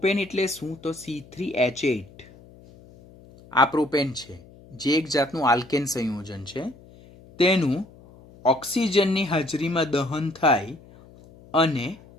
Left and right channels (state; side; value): noise; left; hum, 23 dB below the sound